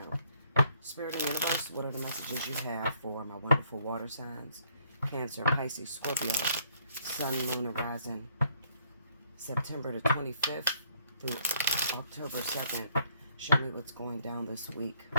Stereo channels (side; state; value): both; inverted; correlation -0.65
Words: Spirit and Universe, what are the messages you have for my wonderful water signs? Cancer, Pisces, Scorpio, Sun, Moon, and Rising, September the 25th through October 2nd. Show me what's going down this week